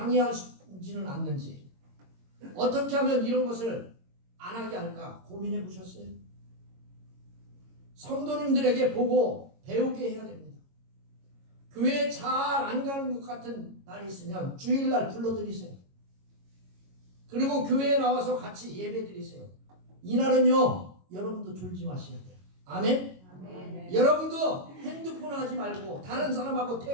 않는지 어떻게 하면 이런 것을 안 하게 할까 고민해 보셨어요? 성도님들에게 보고 배우게 해야 됩니다. 교회 잘 안 가는 것 같은 날이 있으면 주일날 불러드리세요. 그리고 교회에 나와서 같이 예배 드리세요. 이날은요 여러분도 졸지 마셔야 돼요. 아멘? 아멘. 여러분도 핸드폰 하지 말고 다른 사람하고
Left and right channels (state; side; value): late; left; 22 ms